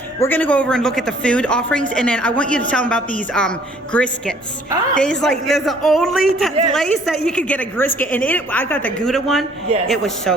we're going to go over and look at the food offerings, and then I want you to tell them about these Griscuits. There's the only place that you could get a Griscuit, and I got the Gouda one. It was so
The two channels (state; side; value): normal; both; correlation 0.58